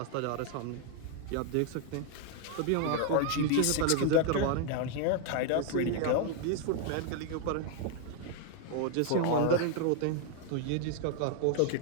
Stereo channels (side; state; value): both; different; correlation 0.00